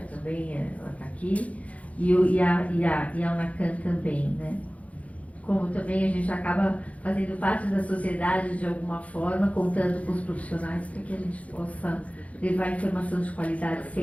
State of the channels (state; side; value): late; right; 0.067 ms